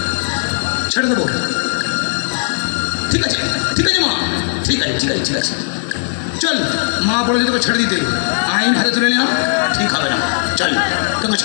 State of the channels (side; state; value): right; silent; digital silence